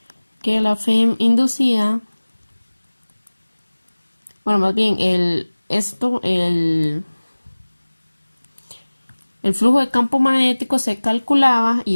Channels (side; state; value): both; inverted; correlation -1.00